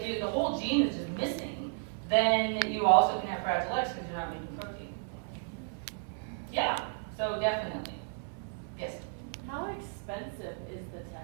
the whole gene is just missing, then you also can have Fragile X because you're not making protein. Yeah. So definitely. Yes. How expensive is the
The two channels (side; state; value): left; silent; 56 dB below the other